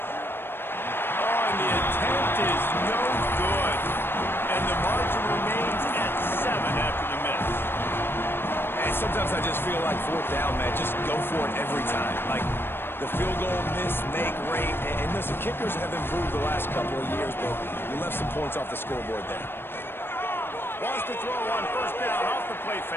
Sometimes I just feel like fourth down, man, just go for it every time. Like the field goal, miss, make, rate. And listen, kickers have improved the last couple of years, but you left some points off the scoreboard there. Wants to throw on first down off the play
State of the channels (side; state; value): right; late; 0.10 ms